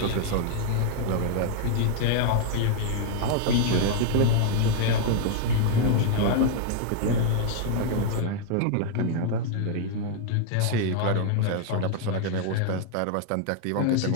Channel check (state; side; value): different; both; correlation 0.00